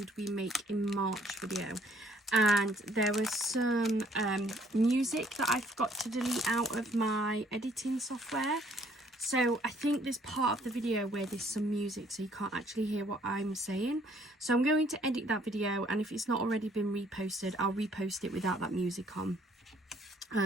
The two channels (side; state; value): both; normal; correlation 0.62